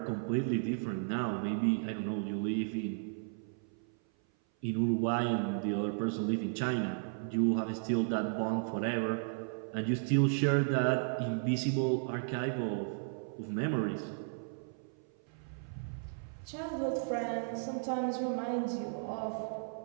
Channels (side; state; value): left; silent; 55 dB below the other